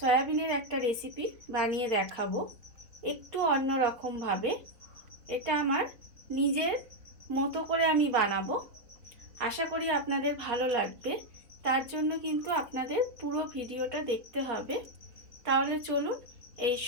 একটা রেসিপি বানিয়ে দেখাবো, একটু অন্যরকমভাবে। এটা আমার নিজের মতো করে আমি বানাবো, আশা করি আপনাদের ভালো লাগবে। তার জন্য কিন্তু আপনাদের পুরো ভিডিওটা দেখতে হবে। তাহলে চলুন এই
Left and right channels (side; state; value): left; late; 4.0 ms